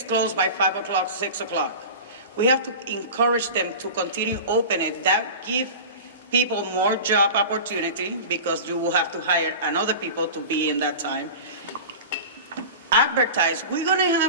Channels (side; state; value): both; inverted; correlation -0.33